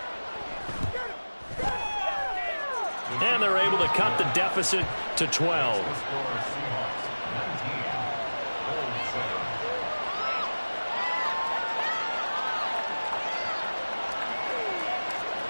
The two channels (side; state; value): both; inverted; correlation -1.00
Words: And they're able to cut the deficit to 12.